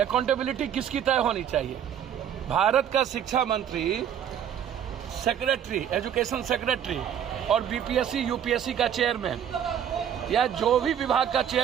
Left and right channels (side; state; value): left; quieter; 9.2 dB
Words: अकाउंटेबिलिटी किसकी तय होनी चाहिए? भारत का शिक्षा मंत्री, सेक्रेटरी, एजुकेशन सेक्रेटरी और बीपीएससी यूपीएससी का चेयरमैन या जो भी विभाग का